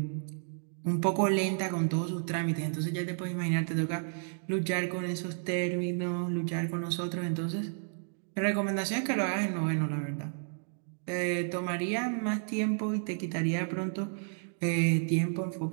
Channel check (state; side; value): silent; left; digital silence